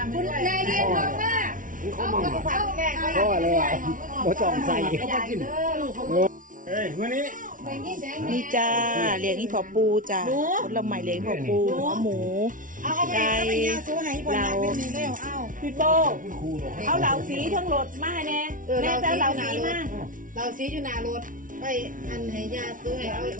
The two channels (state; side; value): late; left; 0.38 ms